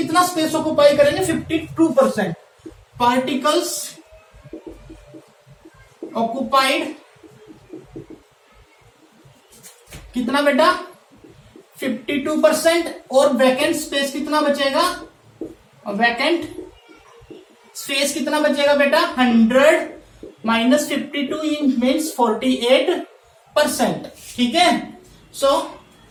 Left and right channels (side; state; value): both; identical; correlation 1.00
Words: स्पेस ऑक्युपाई करेंगे 52%। पार्टिकल्स ऑक्युपाइड कितना बेटा 52%, और वैकेंट स्पेस कितना बचेगा, वैकेंट स्पेस कितना बचेगा बेटा 100 - 52 मीन्स 48%, ठीक है। सो